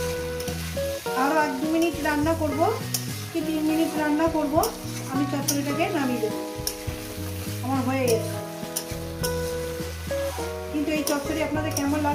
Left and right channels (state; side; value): identical; both; correlation 1.00